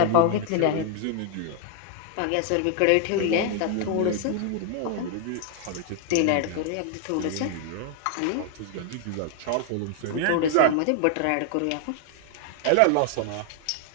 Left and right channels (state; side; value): different; both; correlation 0.00